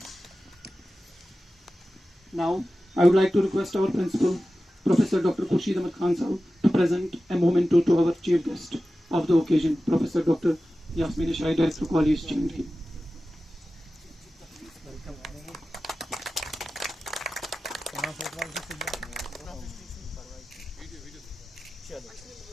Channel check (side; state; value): both; normal; correlation 0.95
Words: Now, I would like to request our principal, Professor Dr. Khurshid Ahmed Khan Sahab, to present a memento to our chief guest of the occasion, Professor Dr. Yasmin Ashai, Director College, J&K.